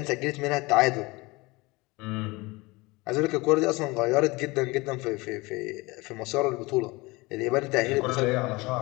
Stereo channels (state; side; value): quieter; right; 23.5 dB